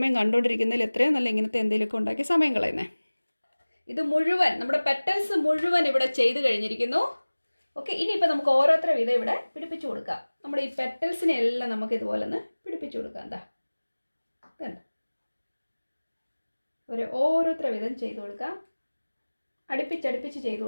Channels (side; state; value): both; inverted; correlation -1.00